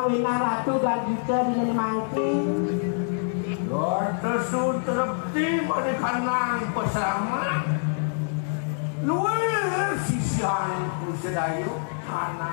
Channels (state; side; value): silent; right; 58 dB below the other